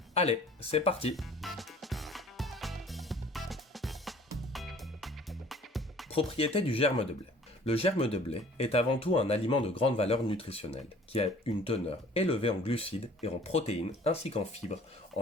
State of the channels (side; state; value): both; normal; correlation 0.52